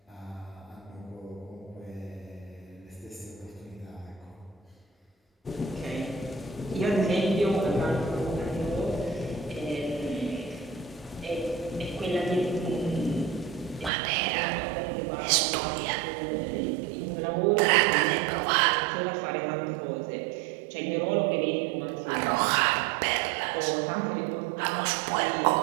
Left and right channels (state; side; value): drops out; left; at 13.9 s